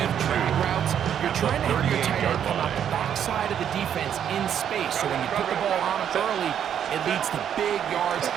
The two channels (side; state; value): left; quieter; 9.1 dB